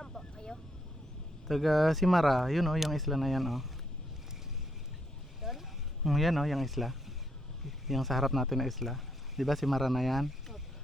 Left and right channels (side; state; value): both; normal; correlation 0.75